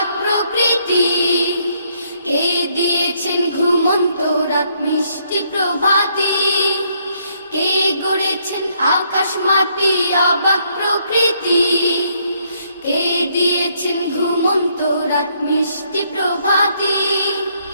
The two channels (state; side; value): inverted; both; correlation -0.71